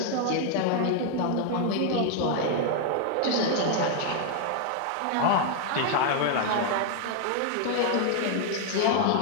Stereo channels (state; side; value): different; both; correlation 0.00